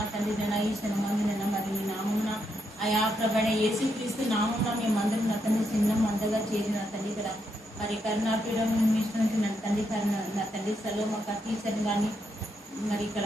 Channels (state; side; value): normal; both; correlation 0.80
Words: తండ్రి నైనా ఈ క్షణమందునైనా మరి మీ నామమున అయా ప్రభైన యేసుక్రీస్తు నామమున మేమందరం నా తండ్రి చిన్న మందగా చేరి నా తండ్రి ఇక్కడ మరి కరుణాపీఠం మిషన్కి నా తండ్రి నా తండ్రి సెలవు మాకు టీచర్ని కానీ మరి ఇక్కడ